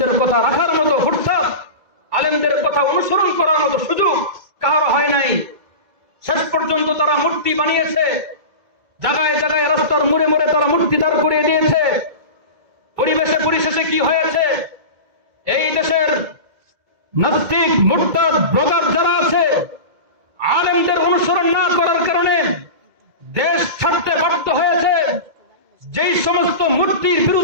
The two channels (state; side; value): late; left; 2.0 ms